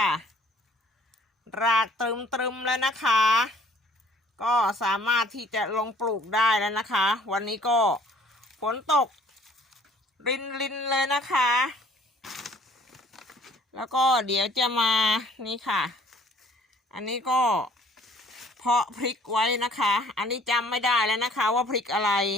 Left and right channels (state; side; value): normal; both; correlation 0.56